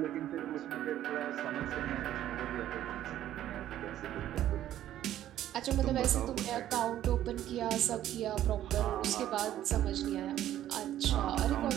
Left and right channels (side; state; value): left; quieter; 12.3 dB